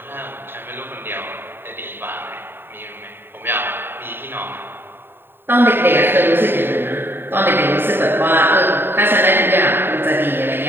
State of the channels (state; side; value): late; left; 0.10 ms